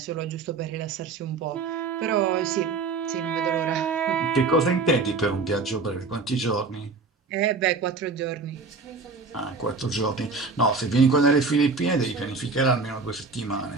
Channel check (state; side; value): quieter; left; 4.2 dB